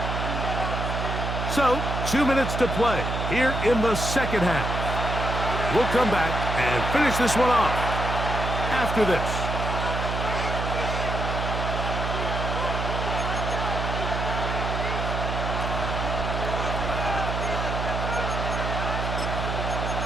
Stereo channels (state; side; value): noise; right; hum, 3 dB below the sound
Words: So, 2 minutes to play here in the second half. We'll come back and finish this one off after this.